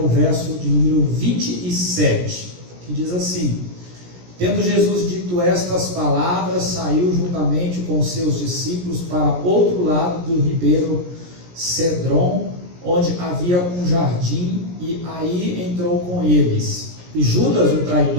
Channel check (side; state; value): left; late; 17 ms